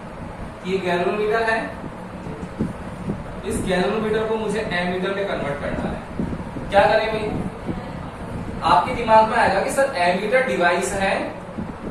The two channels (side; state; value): both; identical; correlation 1.00